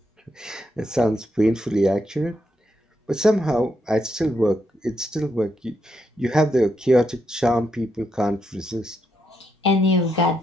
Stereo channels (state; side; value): normal; both; correlation 0.80